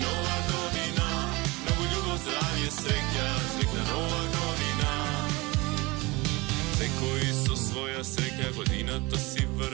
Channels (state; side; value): quieter; left; 23.8 dB